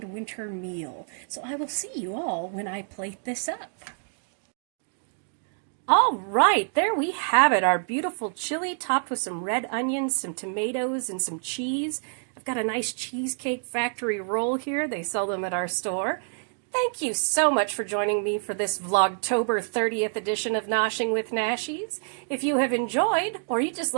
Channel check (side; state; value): left; silent; 60 dB below the other